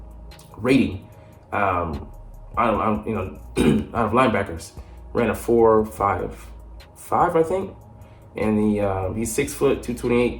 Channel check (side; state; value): both; identical; correlation 1.00